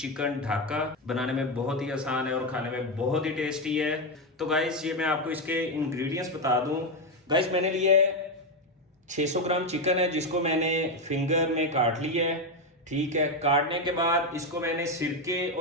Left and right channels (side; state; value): both; normal; correlation 0.08